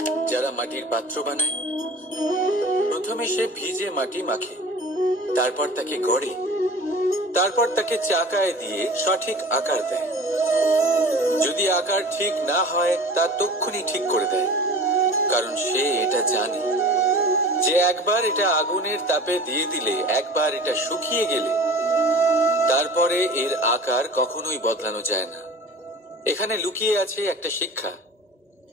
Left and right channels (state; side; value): normal; both; correlation 0.40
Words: যারা মাটির পাত্র বানায়? প্রথমে সে ভিজে মাটি মাখে, তারপর তাকে গড়ে, তারপর তাকে চাকায় দিয়ে সঠিক আকার দেয়। যদি আকার ঠিক না হয় তা তক্ষুনি ঠিক করে দেয়, কারণ সে এটা জানে যে একবার এটা আগুনের তাপে দিয়ে দিলে, একবার এটা শুকিয়ে গেলে তারপরে এর আকার কখনোই বদলানো যায় না। এখানে লুকিয়ে আছে একটা শিক্ষা,